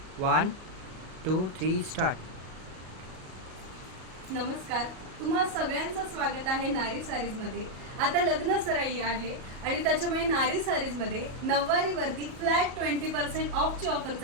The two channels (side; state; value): left; late; 38 ms